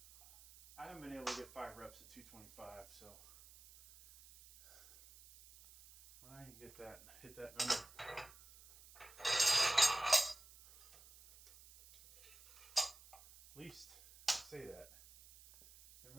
I haven't been able to get 5 reps at 225, so when I can get that, hit that number. At least I say that. There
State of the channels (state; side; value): noise; right; hiss, 21 dB below the sound